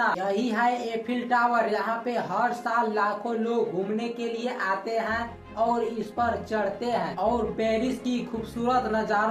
यही है एफिल टावर। यहाँ पे हर साल लाखों लोग घूमने के लिए आते हैं और इस पर चढ़ते हैं और पेरिस की खूबसूरत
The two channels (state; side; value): identical; both; correlation 1.00